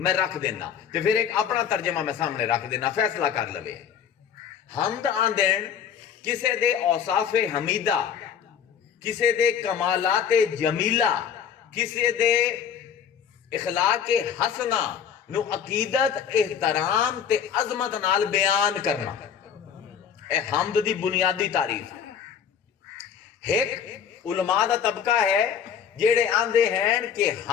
رکھ دینا تے پھر ایک اپنا ترجمہ میں سامنے رکھ دینا فیصلہ کر لوے. حمد آندین کسے دے اوصاف حمیدہ, کسے دے کمالات جمیلہ, کسے دے اخلاق حسنہ نو عقیدت احترام تے عظمت نال بیان کرنا. اے حمد دی بنیادی تعریف ہے. ایک علماء دا طبقہ ہے جیڑے آندے ہیں کہ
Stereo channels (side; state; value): right; quieter; 8.1 dB